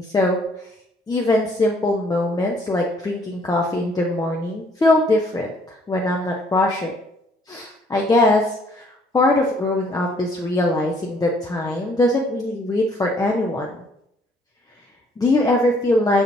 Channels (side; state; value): both; normal; correlation 0.63